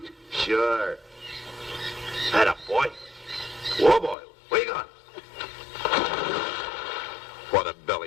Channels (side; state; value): right; drops out; at 4.2 s